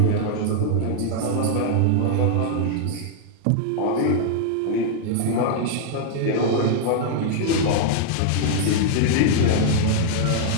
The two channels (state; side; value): different; both; correlation -0.01